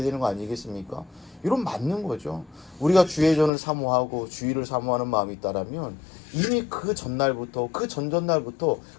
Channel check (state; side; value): drops out; right; at 3.5 s